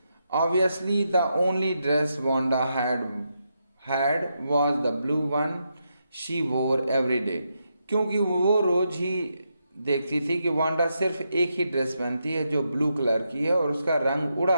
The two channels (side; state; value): both; inverted; correlation -0.83